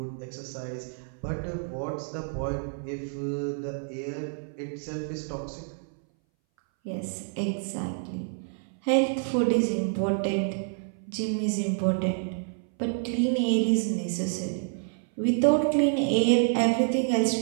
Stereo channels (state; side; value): silent; left; 59 dB below the other